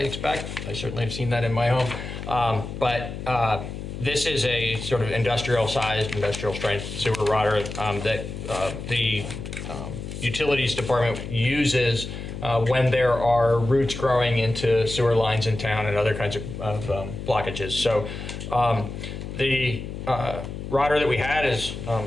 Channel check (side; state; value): left; noise; hum, 8 dB below the sound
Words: expect. I certainly have seen that in my home. But this is a sort of industrial-sized, industrial-strength sewer rotter that the utilities department uses when there are roots growing into sewer lines in town and other kinds of blockages. So the rotter that we had is